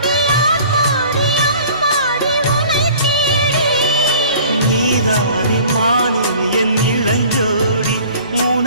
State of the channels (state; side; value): inverted; both; correlation -0.48